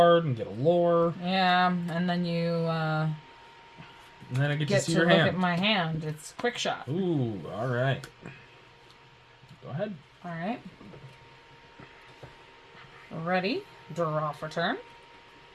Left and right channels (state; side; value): identical; both; correlation 1.00